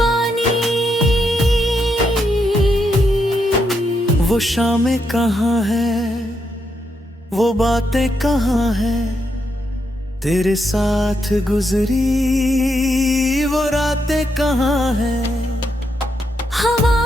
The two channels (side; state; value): both; normal; correlation 0.80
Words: वो शामें कहाँ है, वो बातें कहाँ है, तेरे साथ गुजरी वो रातें कहाँ है। हवा